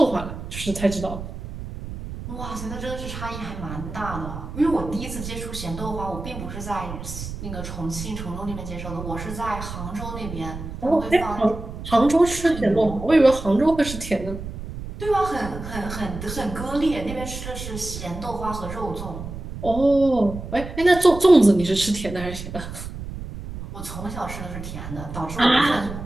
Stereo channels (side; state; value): right; noise; rumble, 9 dB below the sound